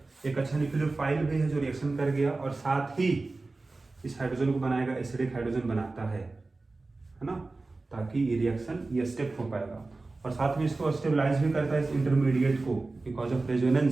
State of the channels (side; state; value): left; quieter; 3.4 dB